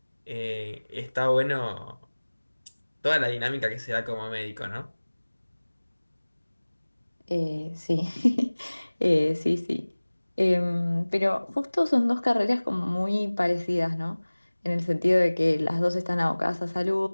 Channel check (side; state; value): both; inverted; correlation -1.00